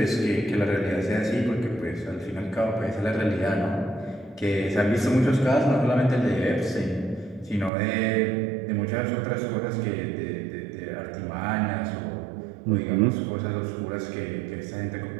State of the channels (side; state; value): left; drops out; at 7.7 s